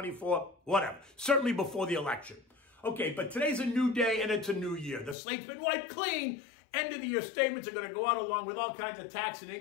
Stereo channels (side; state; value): right; drops out; at 5.2 s